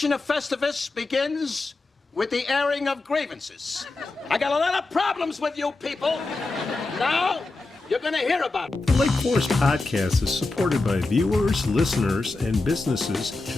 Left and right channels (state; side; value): quieter; right; 3.3 dB